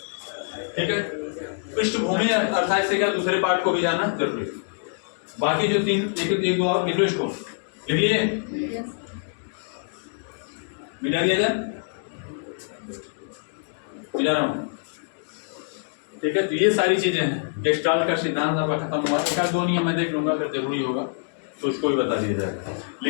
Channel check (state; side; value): silent; right; digital silence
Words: ठीक है। पृष्ठभूमि अर्थात से क्या, दूसरे पार्ट को भी जानना जरूरी है। बाकी जो तीन एक दो और लिख लो, इसको लिख लिए, मिटा दिया जाए, मिटा रहा हूँ, ठीक है। तो ये सारी चीजें हैं, गेस्टाल्ट का सिद्धांत आपका खत्म हुआ, एक दो नियम मैं देख लूंगा, अगर जरूरी होगा तो उसको भी बता दिया जाएगा,